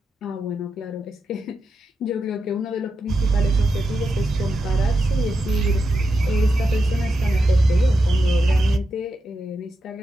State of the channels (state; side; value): normal; both; correlation 0.87